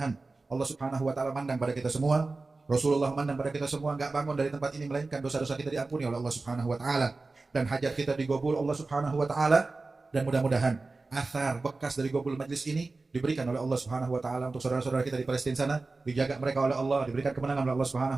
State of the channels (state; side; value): quieter; left; 3.6 dB